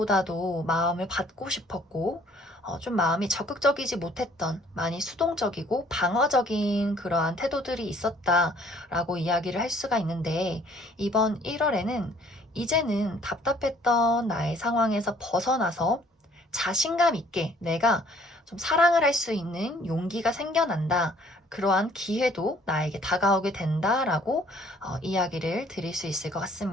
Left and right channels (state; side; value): normal; both; correlation 0.58